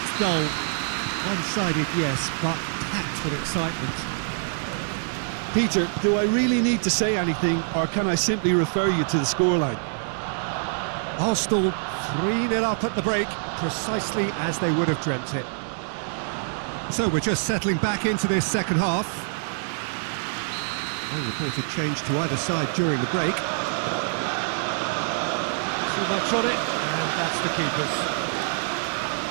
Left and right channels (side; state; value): left; silent; digital silence